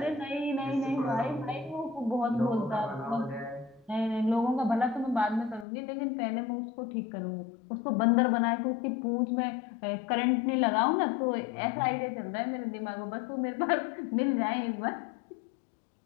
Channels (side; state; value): right; drops out; at 5.7 s